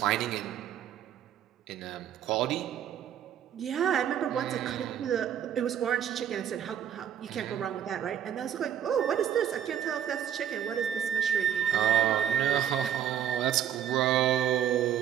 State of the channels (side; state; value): left; quieter; 9.8 dB